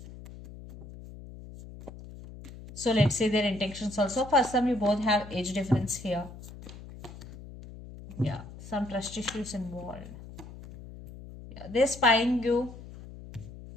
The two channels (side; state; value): left; noise; hum, 15 dB below the sound